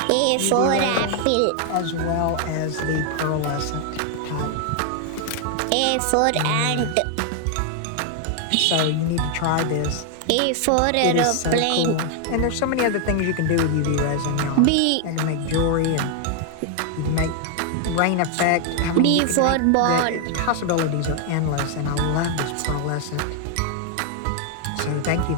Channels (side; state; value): both; different; correlation 0.00